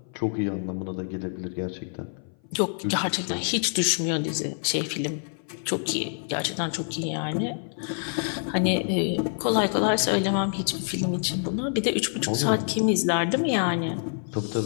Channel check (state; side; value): silent; right; 58 dB below the other